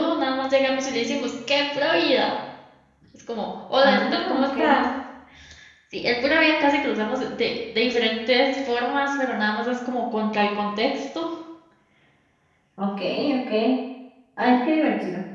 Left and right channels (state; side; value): identical; both; correlation 1.00